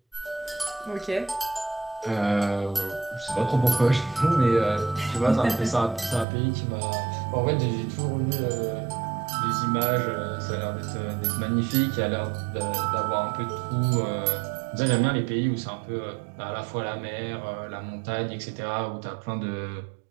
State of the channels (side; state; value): left; drops out; at 6.2 s